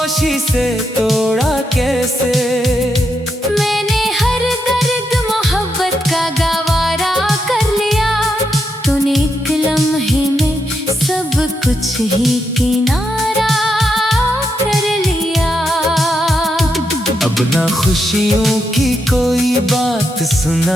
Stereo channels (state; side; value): normal; both; correlation 0.82